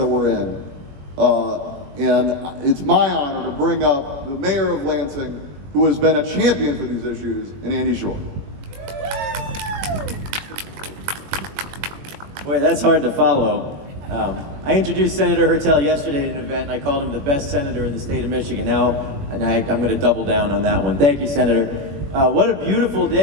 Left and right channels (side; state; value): left; late; 21 ms